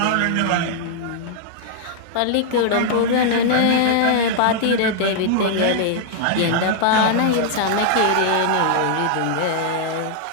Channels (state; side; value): different; both; correlation -0.01